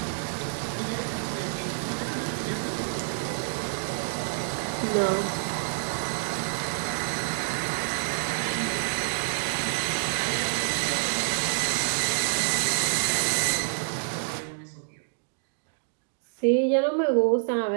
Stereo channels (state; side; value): silent; left; digital silence